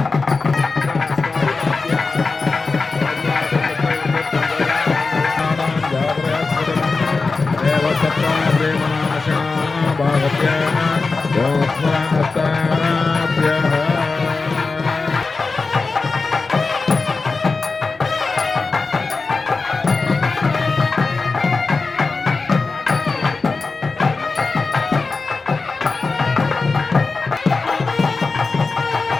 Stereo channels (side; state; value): right; quieter; 4.1 dB